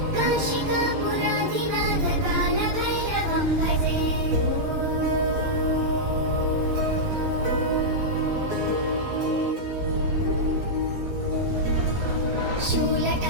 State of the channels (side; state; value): left; late; 11 ms